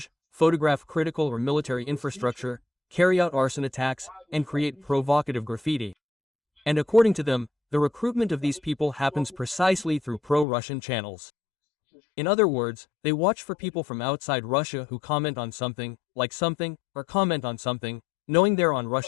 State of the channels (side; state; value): right; drops out; at 10.5 s